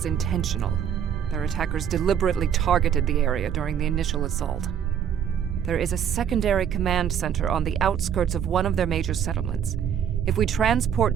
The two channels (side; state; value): left; quieter; 8.8 dB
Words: intentional. Their attackers deliberately targeted the area during the initial assault. There is a secondary command center on the outskirts of one of their major settlements. If we transport